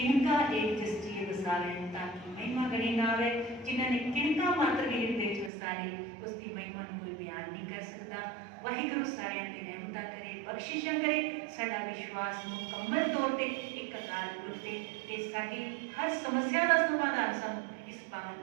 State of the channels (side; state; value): left; drops out; at 5.5 s